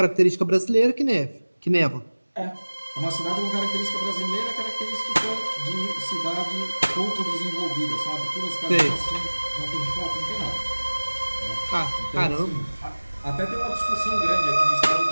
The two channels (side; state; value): both; inverted; correlation -1.00